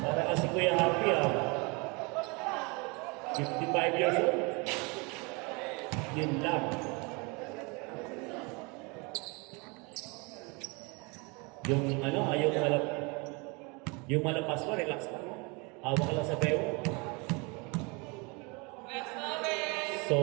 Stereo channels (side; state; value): left; quieter; 29.2 dB